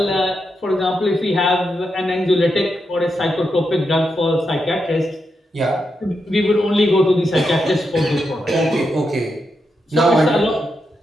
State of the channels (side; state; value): both; normal; correlation 0.85